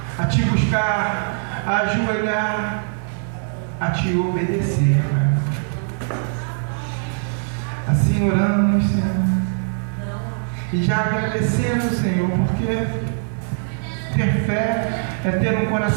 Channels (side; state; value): left; silent; digital silence